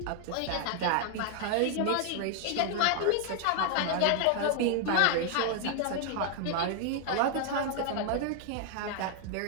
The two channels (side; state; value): both; different; correlation 0.00